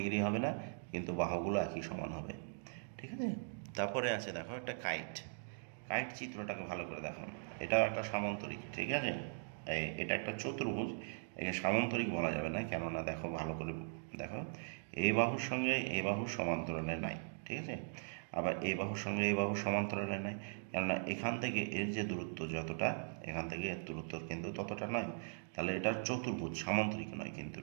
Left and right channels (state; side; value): silent; left; digital silence